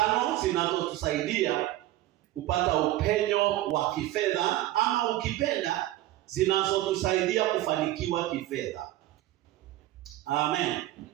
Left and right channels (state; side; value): quieter; left; 15.4 dB